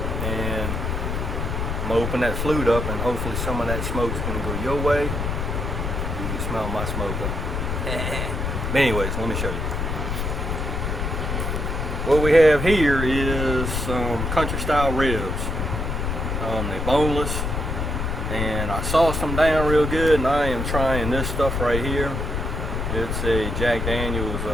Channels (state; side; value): noise; left; rumble, 2 dB below the sound